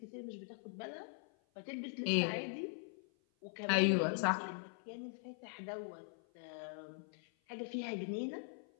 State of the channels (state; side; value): silent; right; 50 dB below the other